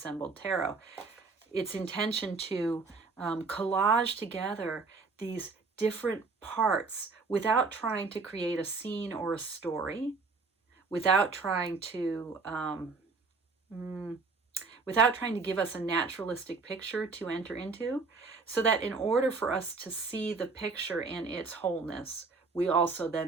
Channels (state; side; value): quieter; left; 4.3 dB